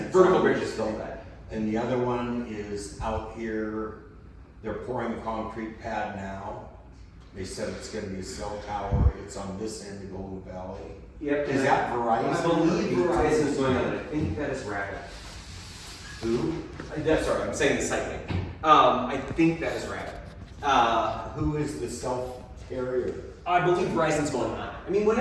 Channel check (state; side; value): identical; both; correlation 1.00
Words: it's vertical on bridge this is still thing. that. And the other one is out here. They're pouring a concrete pad now. They said it's gonna be a cell tower. It's on this end of Golden Valley. Yep. Is that Verizon? I believe Verizon is going on it. I think that is Rapid. Who? That's sorry, I'm saying the site name. I think that is Rapid. Who is the cell carrier? I believe Verizon's going on. I mean,